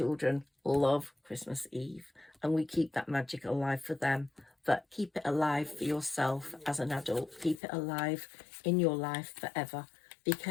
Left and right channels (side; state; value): right; drops out; at 7.6 s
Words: love Christmas Eve, and we keep that magic alive for them. But keep it alive for yourself as an adult. Keep it alive in your life forever,